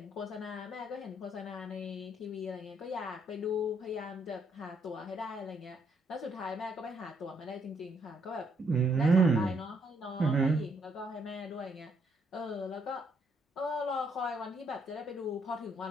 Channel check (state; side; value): normal; both; correlation 0.72